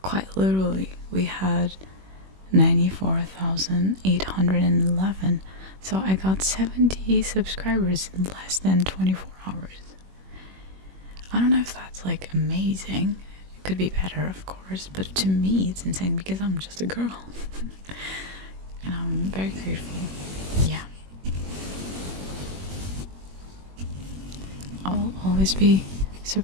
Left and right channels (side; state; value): left; late; 21 ms